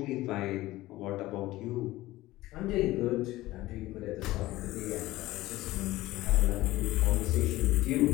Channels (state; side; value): quieter; right; 17.5 dB